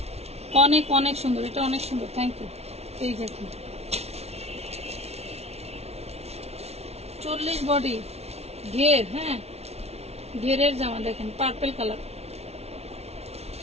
অনেক অনেক সুন্দর, এটা অনেক সুন্দর। Thank you. এই দেখেন 40 বডি ঘের, হ্যাঁ ঘেরের জামা দেখেন, পার্পল কালার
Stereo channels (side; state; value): left; late; 0.31 ms